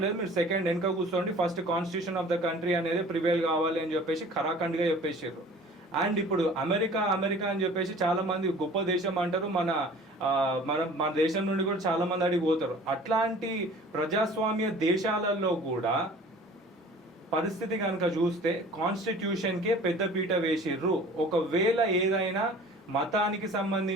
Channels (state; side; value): normal; both; correlation 0.46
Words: లేదు, మీరు సెకండ్ వెనక కూర్చోండి, first constitution of the country అనేది ప్రివేల్ కావాలి అని చెప్పేసి ఖరాఖండ్గా చెప్పేసారు. అండ్ ఇప్పుడు అమెరికా అని చెప్పేసి చాలా మంది గొప్ప దేశం అంటారు, మన దేశం నుండి కూడా చాలా మంది అడిగి పోతారు. అట్లాంటి ప్రజాస్వామ్య దేశాలలో కూడా పరిస్థితి కనుక చూస్తే కాన్స్టిట్యూషన్కే పెద్దపీట వేసిర్రు. ఒకవేళ ఏదైనా మతానికి